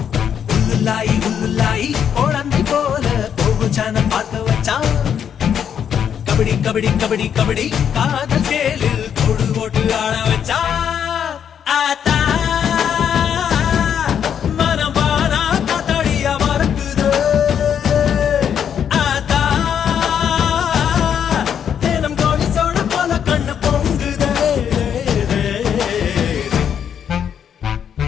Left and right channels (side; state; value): right; quieter; 8.4 dB